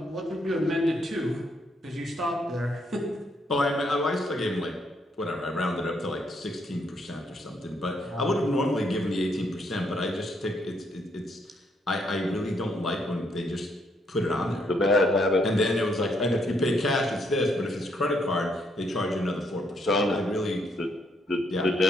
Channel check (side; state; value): both; normal; correlation 0.73